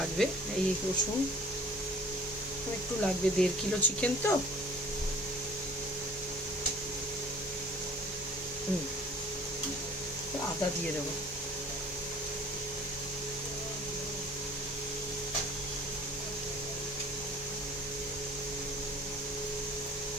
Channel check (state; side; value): normal; both; correlation 0.49